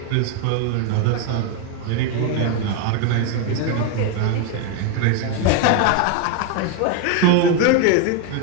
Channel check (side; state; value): both; different; correlation 0.01